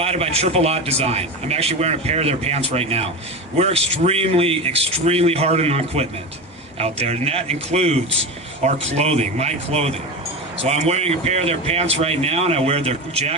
by STVII Design. I'm actually wearing a pair of their pants right now. We're extremely, extremely hard on equipment out there, and that includes our clothing, my clothing. So I'm wearing a pair of their pants right now, and I wear their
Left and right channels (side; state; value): both; normal; correlation 0.23